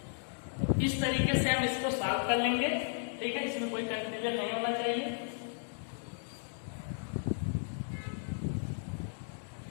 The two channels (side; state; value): right; silent; digital silence